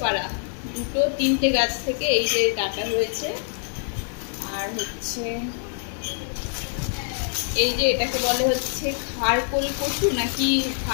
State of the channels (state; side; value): silent; right; digital silence